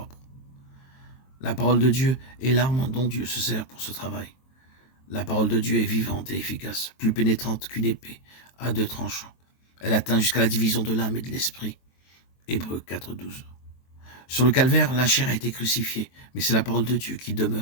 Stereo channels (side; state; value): right; late; 23 ms